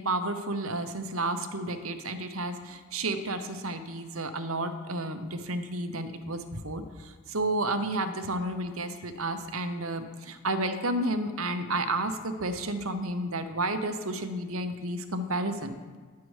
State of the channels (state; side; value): normal; both; correlation 0.09